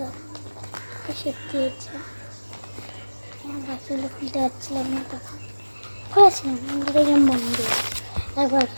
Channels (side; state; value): both; inverted; correlation -1.00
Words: এসে দিয়েছে। বাকিগুলো খুলতে পারছিলাম না তখন খুলেছিলাম দেখলাম বন্ধ একবার